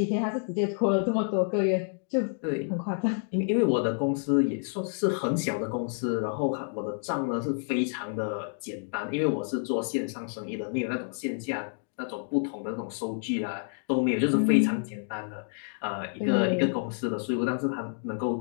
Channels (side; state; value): right; silent; 59 dB below the other